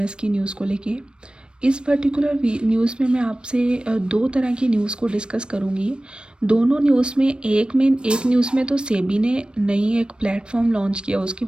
की न्यूज़ को लेके। इस पर्टिकुलर न्यूज़ में मैं आपसे दो तरह की न्यूज़ को डिस्कस करूँगी। दोनों न्यूज़ में एक न्यूज़ में तो सेबी ने नई एक प्लेटफॉर्म लॉन्च किया, उसके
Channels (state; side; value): late; left; 0.054 ms